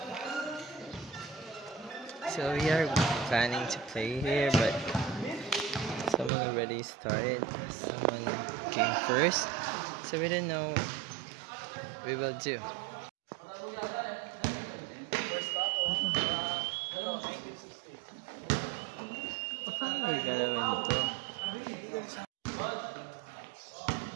So we are planning to play here, but someone already started. Someone came first, so we don't know what we will do. Paano galawin ito?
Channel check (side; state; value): left; drops out; at 6.3 s